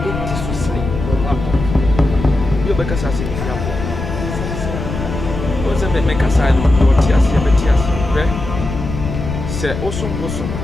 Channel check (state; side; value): noise; left; rumble, 6 dB below the sound